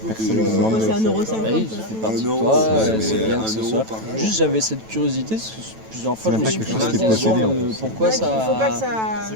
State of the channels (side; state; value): left; late; 9.1 ms